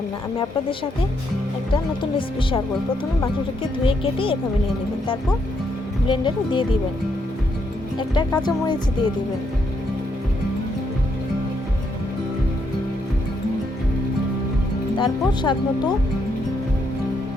আমি আপনাদের সাথে একটা নতুন রেসিপি শেয়ার করব। প্রথমে মাংসটাকে ধুয়ে কেটে এভাবে নিয়ে নেবেন, তারপর ব্লেন্ডারে দিয়ে দিবেন, একটা কাঁচামরিচ দিয়ে দিবেন, তারপর স্বাদ মতো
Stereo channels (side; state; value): both; normal; correlation 0.76